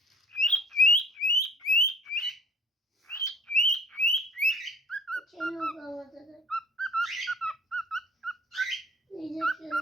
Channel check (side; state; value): both; normal; correlation 0.52